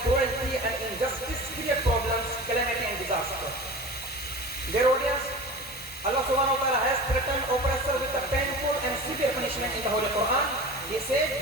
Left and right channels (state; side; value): normal; both; correlation 0.34